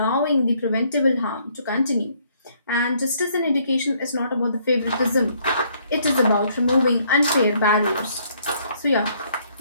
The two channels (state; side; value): inverted; both; correlation -0.66